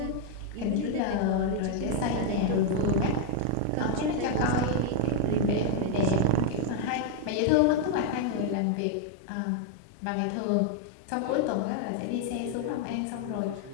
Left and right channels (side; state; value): both; different; correlation 0.00